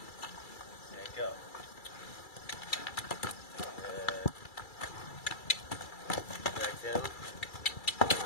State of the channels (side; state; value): right; late; 2.3 ms